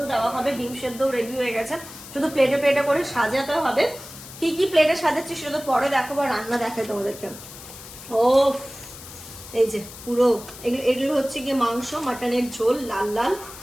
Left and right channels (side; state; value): left; noise; hiss, 15 dB below the sound